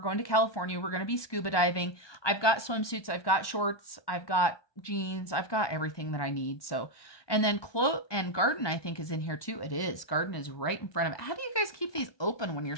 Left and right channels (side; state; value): right; late; 1.2 ms